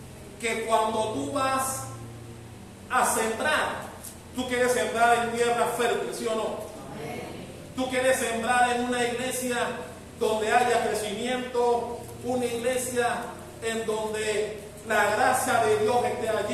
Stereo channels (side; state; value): both; identical; correlation 1.00